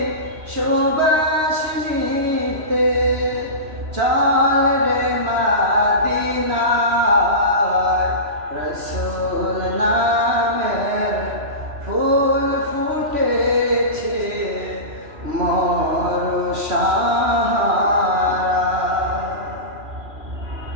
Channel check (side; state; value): left; late; 3.0 ms